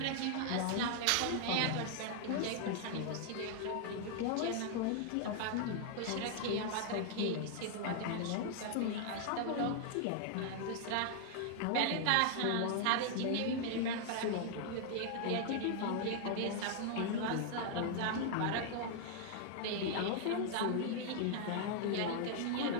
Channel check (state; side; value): different; both; correlation 0.00